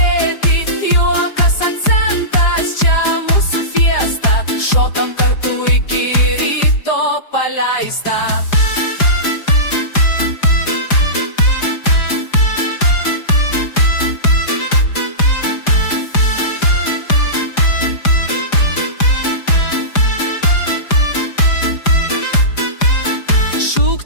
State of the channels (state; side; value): late; right; 4.9 ms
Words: juokas akcentas, čia mūsų fiesta, šokam kartu iki ryto paleista.